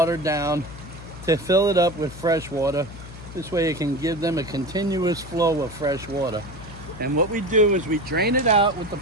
down to fill it up with fresh water. This way it can give them a continuous flow of fresh water. And what we do is we drain it out with the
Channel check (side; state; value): left; noise; hum, 14 dB below the sound